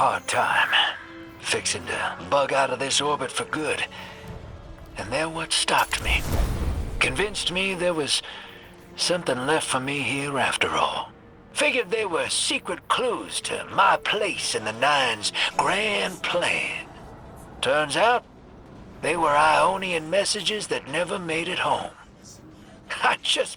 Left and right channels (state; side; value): identical; both; correlation 1.00